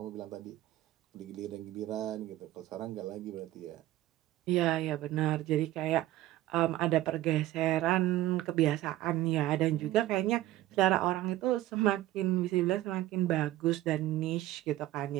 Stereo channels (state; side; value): quieter; left; 15.2 dB